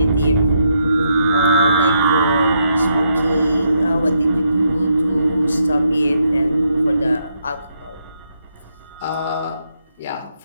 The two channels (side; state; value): both; inverted; correlation -0.78